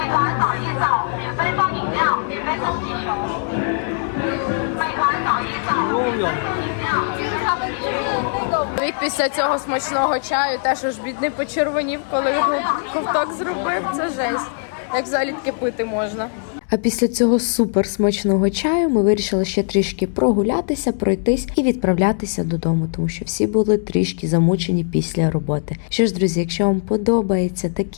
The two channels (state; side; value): silent; right; 65 dB below the other